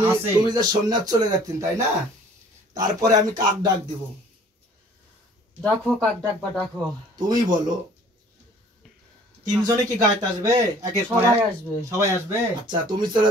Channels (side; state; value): both; normal; correlation 0.53